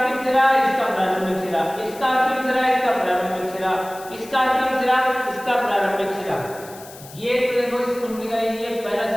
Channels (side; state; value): left; noise; hiss, 19 dB below the sound